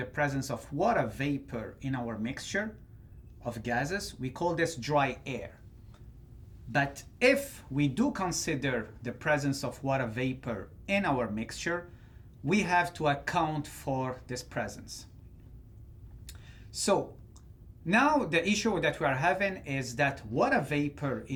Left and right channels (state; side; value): identical; both; correlation 1.00